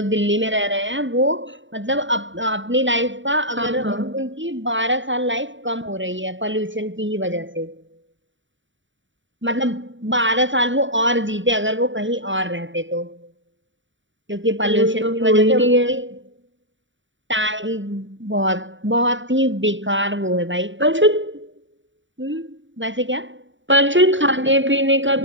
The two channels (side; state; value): left; late; 0.55 ms